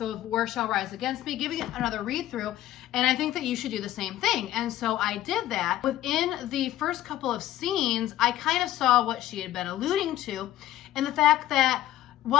War Shall Rise Against Me, giving it another read through, and I think that you should do the same thing." And so I did that. Within the first couple of scenes, I kind of saw what she had been alluding to, and the fact that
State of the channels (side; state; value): right; quieter; 13.9 dB